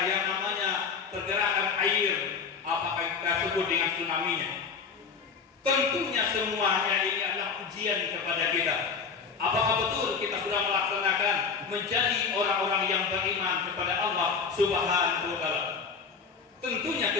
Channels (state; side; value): quieter; right; 5.5 dB